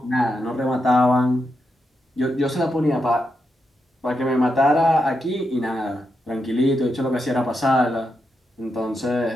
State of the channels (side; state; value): both; normal; correlation 0.85